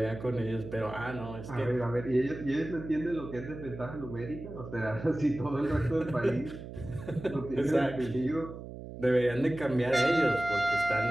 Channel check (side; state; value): right; noise; hum, 11 dB below the sound